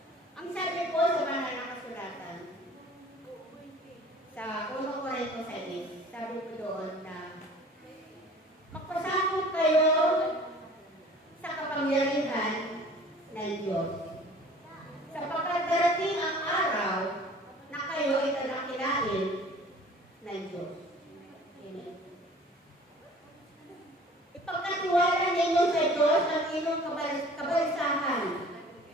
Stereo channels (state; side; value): normal; both; correlation 0.48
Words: Ang sabi po sa banal na kasulatan, sa 1 Corinto 6, sabi ko doon na magpasakot kayo sa kapangyarihan ng Diyos. Sapagkat darating ang araw na kayo ay tadakilain ng Diyos. Amen. Ipagkatiwala ninyo sa Diyos ang inyong kabalisahan